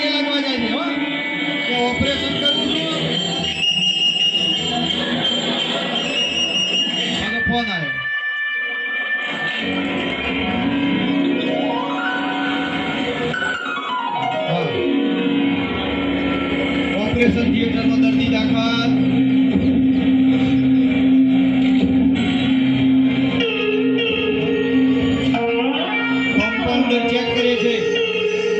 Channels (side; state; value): both; identical; correlation 1.00